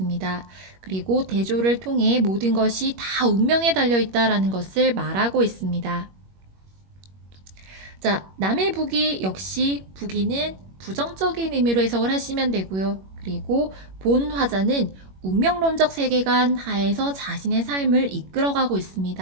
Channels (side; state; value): left; late; 21 ms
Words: 그리고 대조를 통해 모든 것이 다 운명에 달려 있다라는 것을 말하고 있습니다. 자, 남의 부귀 역시 부귀는 부정적인 의미로 해석을 하시면 되고요. 그리고 본 화자는 운명론적 세계관 하에서 자신의 삶을 이끌어가고